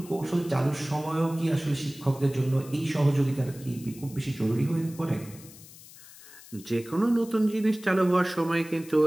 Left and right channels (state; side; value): noise; left; hiss, 19 dB below the sound